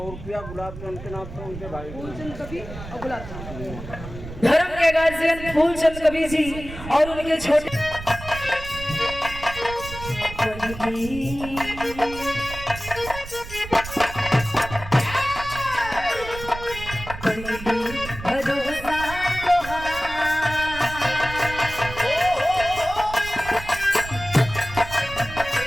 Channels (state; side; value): noise; right; rumble, 12 dB below the sound